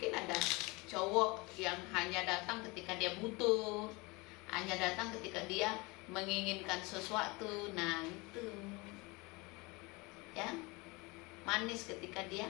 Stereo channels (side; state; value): right; quieter; 25.5 dB